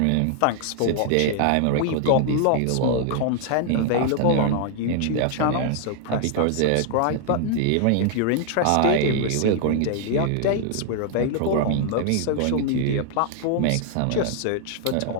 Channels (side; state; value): both; different; correlation 0.00